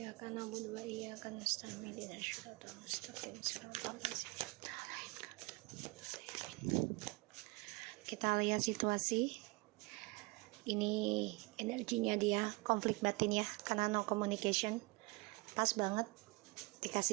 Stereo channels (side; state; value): left; quieter; 26.2 dB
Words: na'budu wa iyyaka nasta'in ihdinas siratal mustaqim siratal ladzina an'amta 'alaihim. Kita lihat situasi. Ini energinya dia konflik batin ya, karena no communication. Pas banget